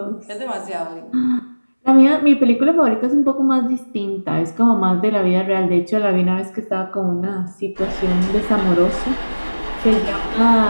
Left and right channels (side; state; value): both; inverted; correlation -1.00